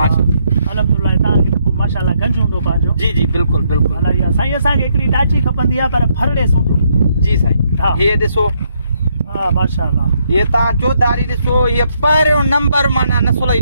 अल्हम्दुलिल्लाह तव्हांखे माशाल्लाह गंज हूंदो पंहिंजो जी जी बिल्कुल बिल्कुल अलाह साईं असांखे हिकिड़ी टाची खपंदी आहे पर फरड़े सूट जी साईं हा ये ॾिसो हा माशाल्लाह ये तव्हां चौधारी ॾिसो ये पहिरियों नंबर माना नसुल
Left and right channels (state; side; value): inverted; both; correlation -0.74